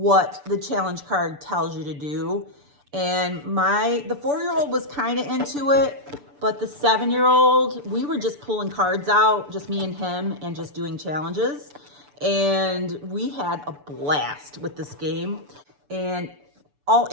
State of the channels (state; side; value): late; left; 6.9 ms